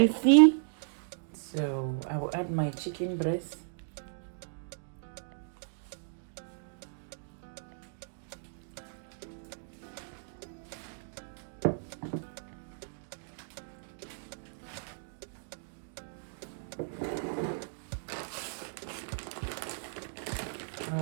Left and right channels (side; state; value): left; silent; digital silence